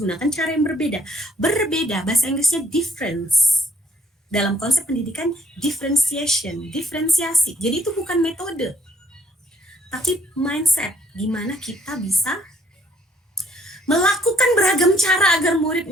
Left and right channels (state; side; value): normal; both; correlation 0.65